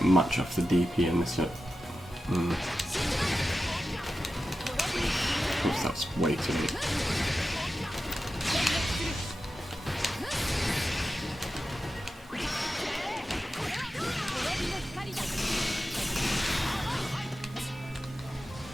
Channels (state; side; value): normal; both; correlation 0.92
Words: much off the DP in this. Oops, that's way too late.